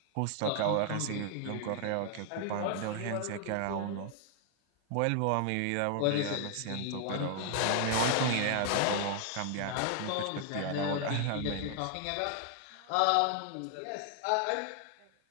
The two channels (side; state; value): both; different; correlation 0.00